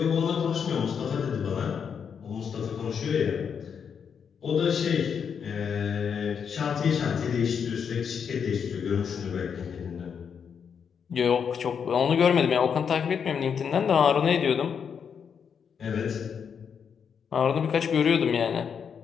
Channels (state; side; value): quieter; right; 7.0 dB